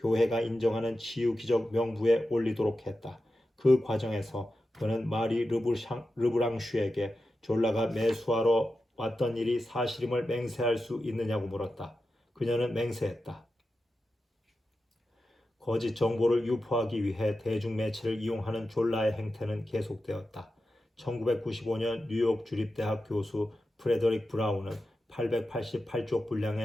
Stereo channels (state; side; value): normal; both; correlation 0.91